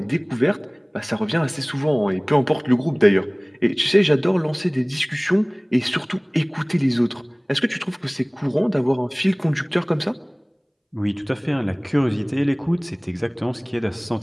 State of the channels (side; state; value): both; identical; correlation 1.00